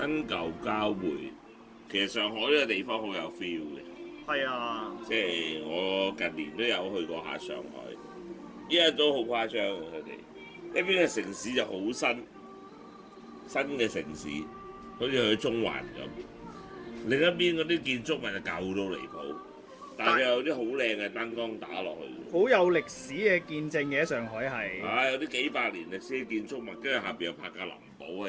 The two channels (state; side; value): identical; both; correlation 1.00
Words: 舊交匯，其實上海呢個地方好有 feel 嘅。係啊，即係我近年都有去過下上海，依家都好誇張嘅佢哋。一邊嘅城市就好新嘅城市，好似去中環咁。另一邊嗰啲建築物就舊到離譜，但係有啲好靚嘅燈光打落去。好有歷史嘅見證嘅，上海係。有啲幾百年歷史嘅建築物，跟住下邊又拍架林寶